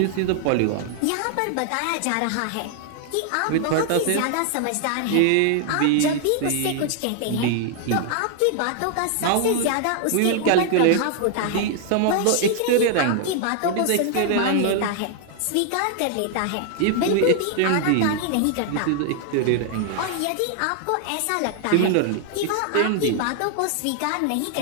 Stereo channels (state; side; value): different; both; correlation 0.00